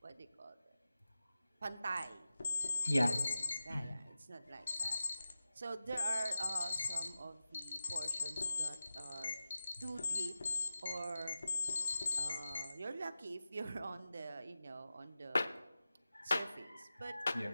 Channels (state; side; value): inverted; both; correlation -0.94